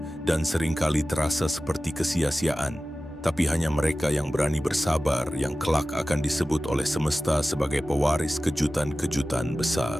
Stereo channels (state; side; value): normal; both; correlation 0.96